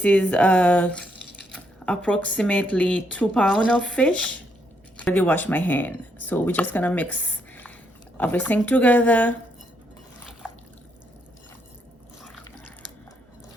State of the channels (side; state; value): both; normal; correlation 0.76